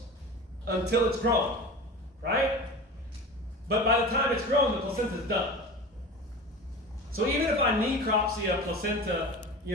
until it's grown, right? But by the time it's grown, the placenta is done. So even if I necropsy a placenta,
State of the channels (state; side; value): normal; both; correlation 0.32